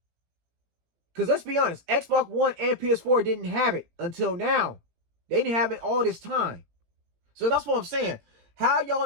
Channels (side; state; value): left; late; 18 ms